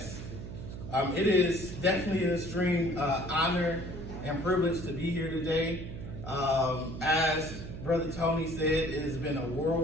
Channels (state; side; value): noise; right; hum, 9 dB below the sound